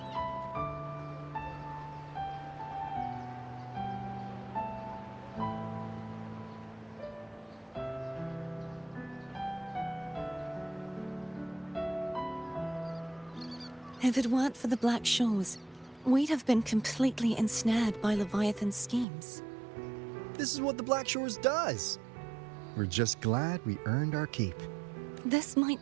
If it weren't for the Black Shores, we'd have been completely ensnared by Leviathan's schemes. This is what the Black Shores does. We're just glad we earned our keep. This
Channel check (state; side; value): drops out; left; at 19.1 s